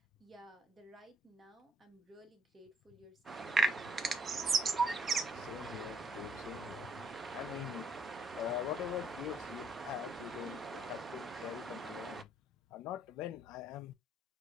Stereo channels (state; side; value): normal; both; correlation 0.70